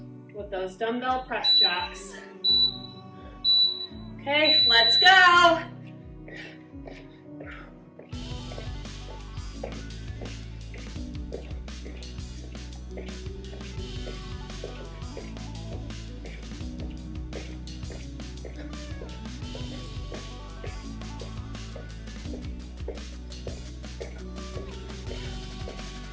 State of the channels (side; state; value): both; identical; correlation 1.00